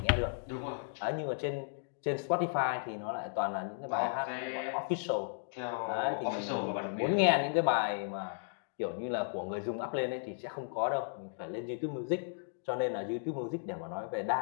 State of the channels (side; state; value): right; silent; digital silence